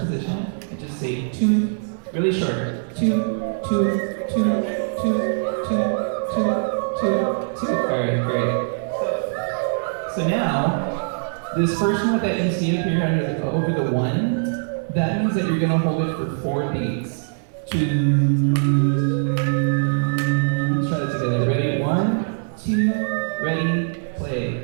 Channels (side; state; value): left; silent; digital silence